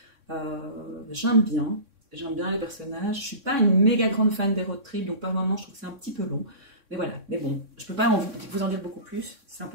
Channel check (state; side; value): late; left; 3.6 ms